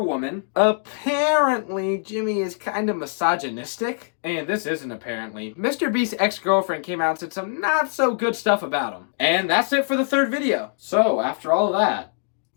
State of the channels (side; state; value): right; silent; digital silence